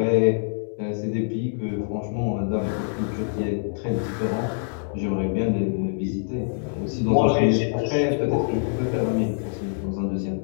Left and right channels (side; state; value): right; silent; 62 dB below the other